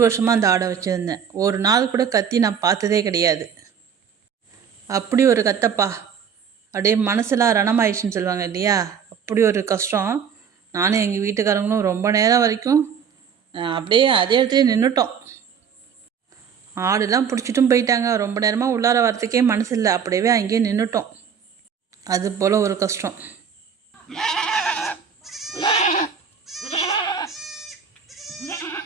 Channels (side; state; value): left; quieter; 7.2 dB